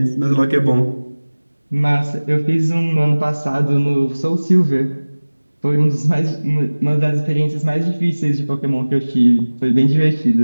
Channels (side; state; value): both; inverted; correlation -1.00